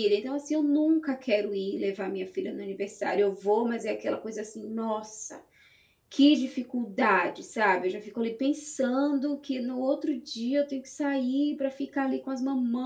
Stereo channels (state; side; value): identical; both; correlation 1.00